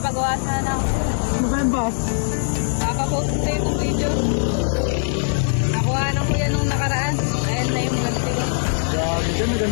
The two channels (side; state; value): right; silent; digital silence